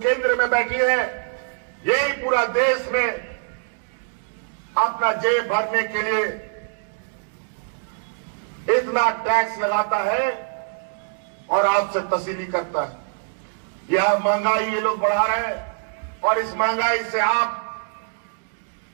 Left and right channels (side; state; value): left; silent; digital silence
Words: में बैठी है, यही पूरा देश में अपना जेब भरने के लिए इतना टैक्स लगाता है और आपसे तसीली करता है। यह महंगाई ये लोग बढ़ा रहे हैं और इस महंगाई से आप